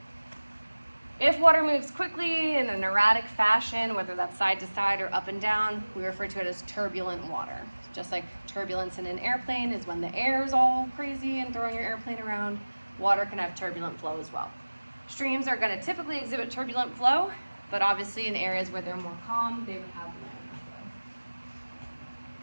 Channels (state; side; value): inverted; both; correlation -1.00